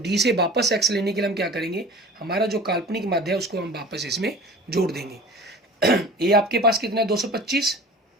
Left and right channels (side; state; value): both; normal; correlation 0.40